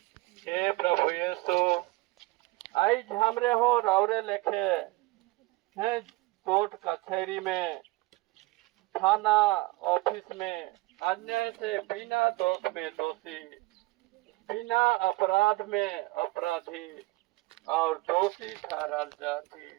हे प्रभु यीशु आज हमरे हो राउरे लेखे है कोर्ट कचहरी में थाना ऑफिस में अन्याय से बिना दोष में दोषी बिना अपराध में अपराधी और दोषी ठहराल जाती।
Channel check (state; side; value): quieter; left; 21.8 dB